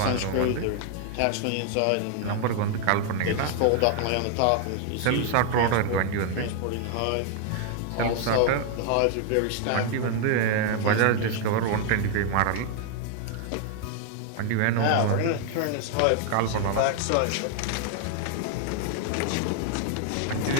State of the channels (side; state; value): both; different; correlation 0.00